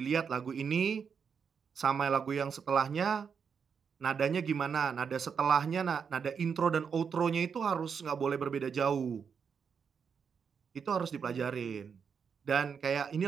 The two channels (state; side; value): quieter; left; 6.5 dB